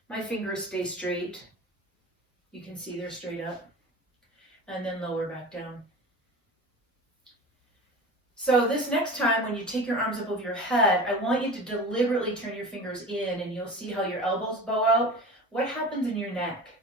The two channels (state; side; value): normal; both; correlation 0.34